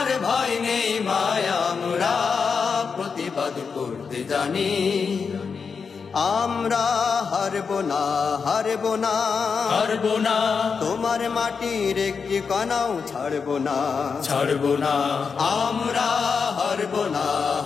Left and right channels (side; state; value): right; quieter; 5.6 dB